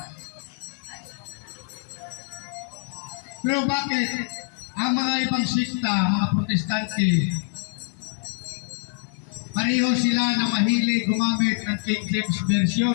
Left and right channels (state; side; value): silent; right; 62 dB below the other